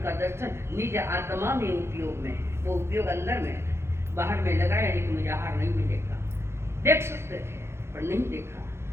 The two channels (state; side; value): late; left; 0.12 ms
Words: दर्शन निज आत्मा में उपयोग में, वो उपयोग अंदर में, बाहर में लगाया नहीं कि मुझे आहार नहीं मिलेगा। देख सकते थे पर नहीं देखा।